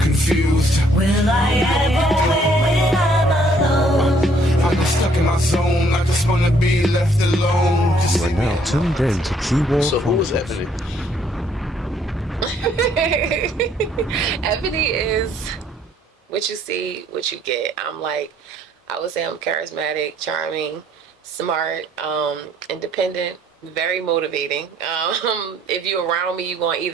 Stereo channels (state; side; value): normal; both; correlation 0.64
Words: Will I ever win when I'm alone? I'm just stuck in my zone. I just wanna be left alone. Just You are leave me now alone. tuned in to Q-War So who was Chronicles. Ebony? Ebony is what you see, what you get. I would say I'm charismatic, charming, smart, independent, very motivating. If you're around me, you're going to